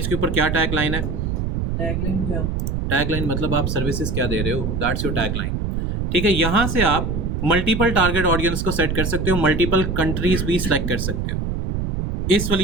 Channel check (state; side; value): noise; right; rumble, 1 dB below the sound